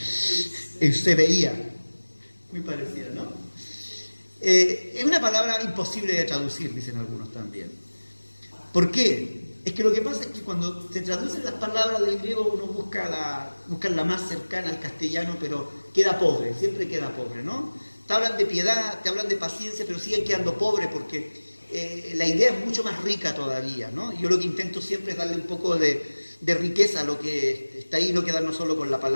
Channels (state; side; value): inverted; both; correlation -1.00